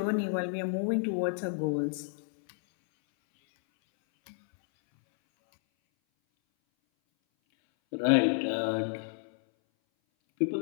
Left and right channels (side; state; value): right; silent; 58 dB below the other